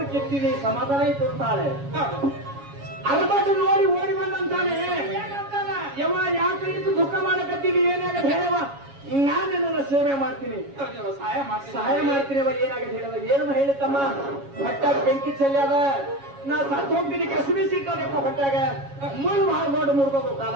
ಕಿತ್ತಿದಿ ಸಮಾಧಾನ ಆಯ್ತು ಅಂತಾಳೆ. ಹೌದು ಅರ್ಬಟ್ಟು ನೋಡಿ ಓಡಿ ಬಂದಂತಾನೆ. ಏನಂತಾನ ಯವ್ವ ಯಾಕೆ ಇದ್ದು ದುಃಖ ಮಾಡಕತ್ತೀನಿ, ಏನಾಗತ್ತೆ ಹೇಳವ, ನಾನು ನನ್ನ ಸೇವೆ ಮಾಡ್ತೀನಿ, ಸಹಾಯ ಮಾಡ್ತೀನಿ. ಏನಾಗತ್ತೆ ಹೇಳವ, ಏನು ಹೇಳಿತಮ್ಮ, ಹೊಟ್ಟಾಗ ಬೆಂಕಿ ಚೆಲ್ಲಾದ, ನಾ ಸತ್ತು ಹೋಗ್ತೀನಿ, ಕಸಬಿ ಸಿಗ್ತಾನೆಪ್ಪ ಹೊಟ್ಟಾಗ, ಮುಳ್ಳು ಮಾಡಿ ಮುರ್ಬೇಕು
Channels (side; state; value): left; late; 7.2 ms